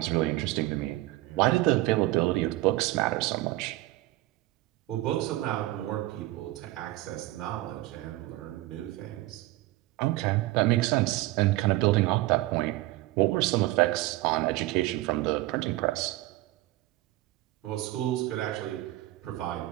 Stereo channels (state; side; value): quieter; left; 17.8 dB